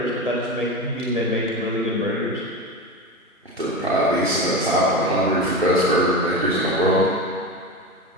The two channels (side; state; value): both; normal; correlation 0.24